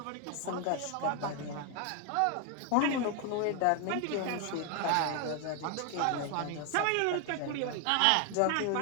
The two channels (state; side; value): different; both; correlation 0.01